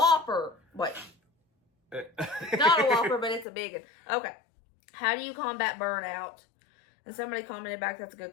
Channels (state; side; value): drops out; right; at 3.5 s